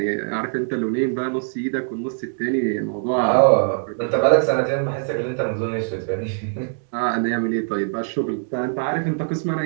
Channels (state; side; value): silent; left; digital silence